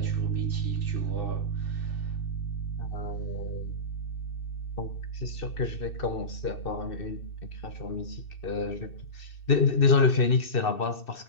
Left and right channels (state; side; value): late; right; 2.6 ms